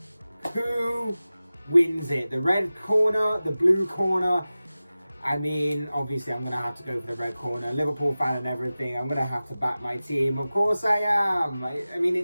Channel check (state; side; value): inverted; both; correlation -0.96